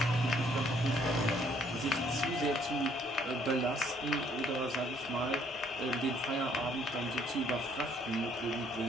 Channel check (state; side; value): normal; both; correlation 0.64